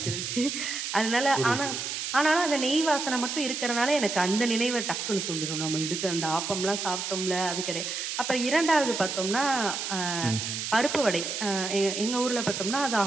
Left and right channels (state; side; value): noise; right; hiss, 4 dB below the sound